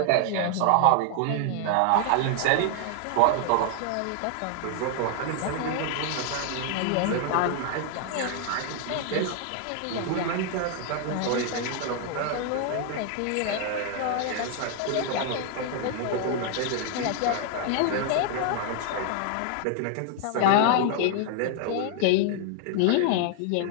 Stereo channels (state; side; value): different; both; correlation 0.00